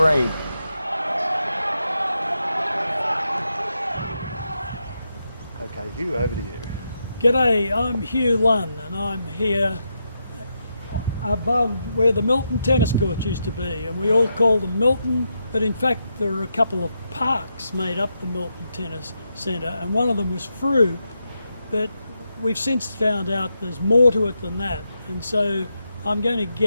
Okay, Hugh, over to you. G'day, I'm Hugh Lunn and I'm here above where the Milton tennis courts used to be, and we all call them Milton, but in fact there are a couple of parks made up the Milton Tennis Centre, and one of them was Frew, but we've since found out there's more to it than that, and so I'm going to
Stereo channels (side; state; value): both; inverted; correlation -0.84